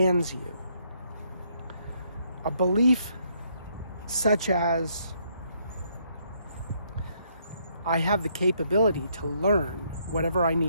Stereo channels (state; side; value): inverted; both; correlation -0.72